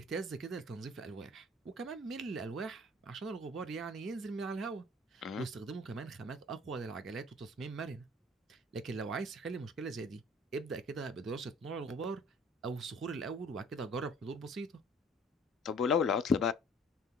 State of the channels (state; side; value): normal; both; correlation 0.52